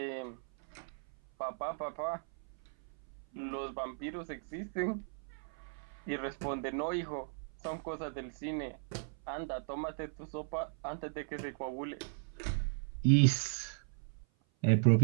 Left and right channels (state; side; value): silent; left; 53 dB below the other